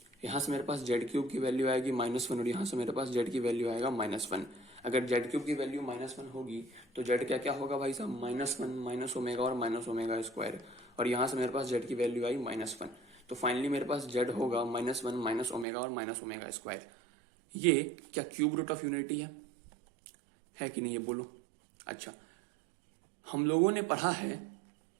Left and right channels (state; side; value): drops out; left; at 15.7 s